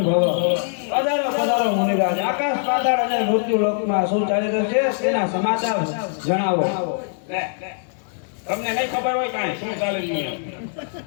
ભવ. પધારો મુનિરાજ. આકાશ પાતાળ અને મૃત્યુ લોકમાં શું ચાલી રહ્યું છે તેના સમાચાર જણાવો. તમને નહીં ખબર હોય કાંઈ શું ચાલે છે?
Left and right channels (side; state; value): right; silent; 63 dB below the other